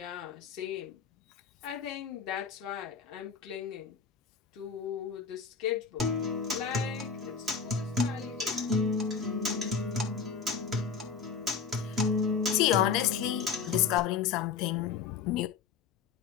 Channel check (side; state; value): right; quieter; 5.9 dB